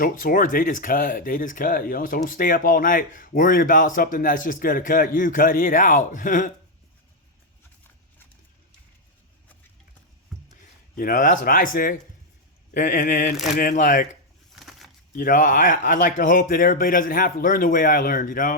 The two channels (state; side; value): normal; both; correlation 0.01